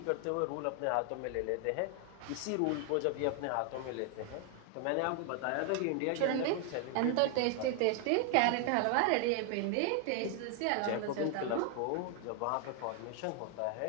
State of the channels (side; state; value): both; different; correlation 0.00